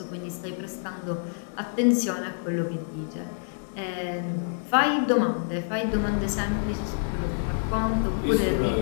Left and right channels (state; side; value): silent; right; digital silence